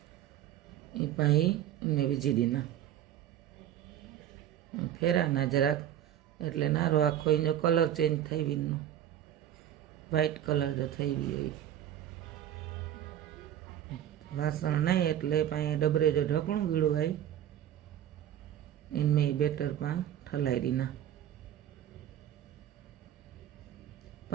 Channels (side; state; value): left; quieter; 11.0 dB